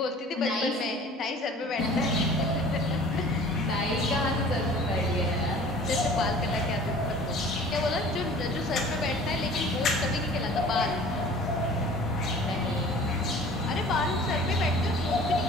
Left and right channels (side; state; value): both; normal; correlation 0.46